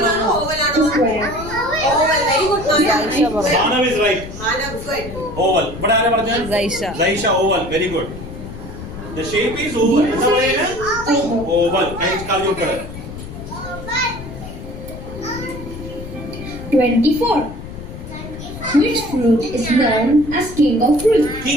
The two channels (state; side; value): noise; left; rumble, 11 dB below the sound